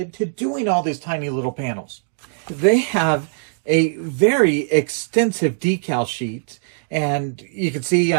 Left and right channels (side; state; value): left; silent; digital silence